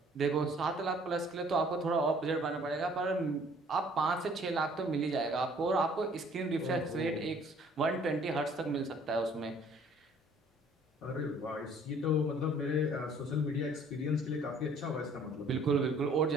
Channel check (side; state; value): both; normal; correlation 0.57